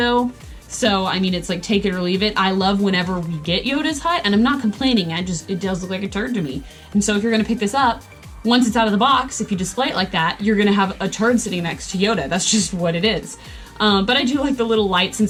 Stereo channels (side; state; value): both; identical; correlation 1.00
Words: So, I mean, it's like take it or leave it. I love whenever we get Yoda's hut, and I'm not complaining. It does look like a turd to me. And so if you're going to pick this up, once it's out of the box, if you display it like that, you're going to have a turd sitting next to Yoda. That's just what it is. But I do like the little lights